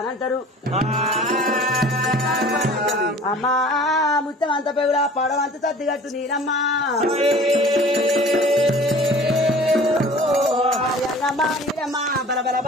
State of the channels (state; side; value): normal; both; correlation 0.46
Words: అమ్మా ముత్తం అంత పెగులా పడవంత తద్దిగట్టు నీరమ్మ నీరమ్మ బల బల